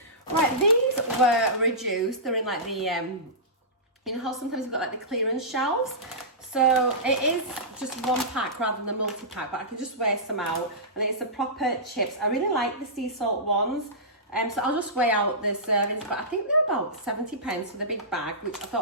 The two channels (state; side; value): normal; both; correlation -0.19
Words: Right, these were reduced. They're in like the, you know how sometimes you've got like the clearance shelves? So it is just one pack rather than a multi-pack, but I can just weigh some out. And it's the proper chips. I really like the sea salt ones. So I'll just weigh out the servings, but I think they're about 70 pence for the big bag, which I